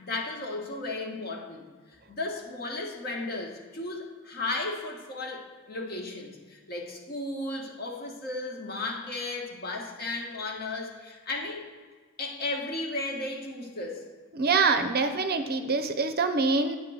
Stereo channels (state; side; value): normal; both; correlation 0.08